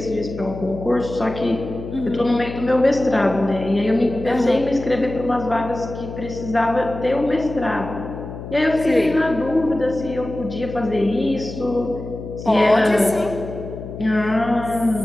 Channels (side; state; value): left; noise; hum, 10 dB below the sound